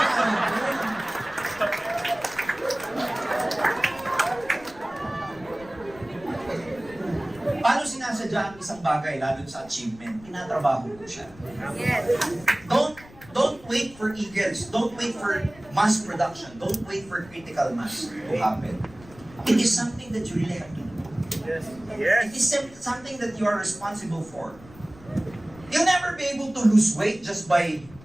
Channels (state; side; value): noise; left; rumble, 21 dB below the sound